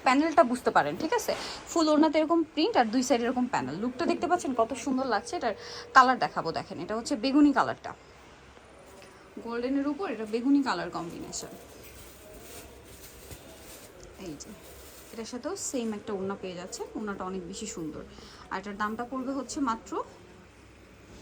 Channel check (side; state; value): both; identical; correlation 1.00